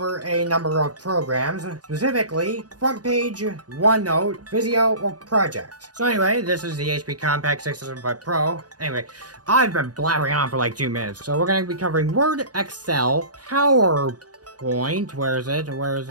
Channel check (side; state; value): left; late; 0.69 ms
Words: a number of programs, specifically front page, OneNote, Visio, or Project. So anyway, this is the HP Compact 675 Pro. Anyway, I've been blabbering on for like 2 minutes. So we're going to be covering Word, Excel, PowerPoint, where is it?